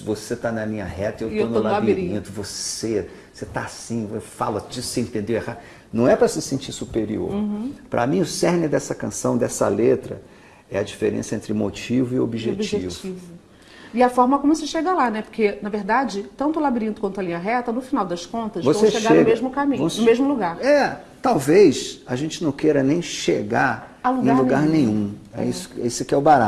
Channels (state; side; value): identical; both; correlation 1.00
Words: Você está na linha reta, eu estou no labirinto. Você está assim, eu falo disso, você entendeu errado. Não é para se sentir superior. Para mim, o cerne dessa canção, dessa letra, é a diferença entre motivo e objetivo. E a forma como você chega lá, né? Porque, na verdade, tanto o labirinto quanto a linha reta, no final das contas, vão chegar no mesmo caminho, no mesmo lugar. Talvez a gente não queira nem chegar em lugar nenhum. Esse que é o